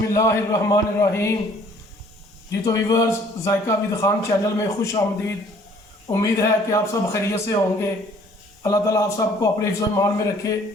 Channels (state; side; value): normal; both; correlation 0.57